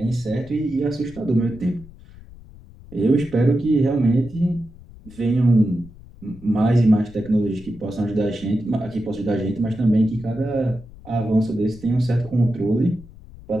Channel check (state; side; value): noise; left; rumble, 20 dB below the sound